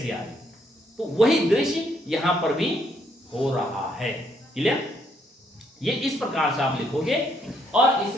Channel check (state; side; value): normal; both; correlation 0.71